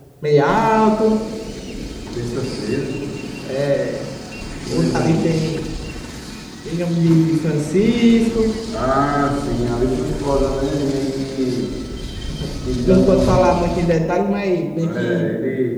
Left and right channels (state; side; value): identical; both; correlation 1.00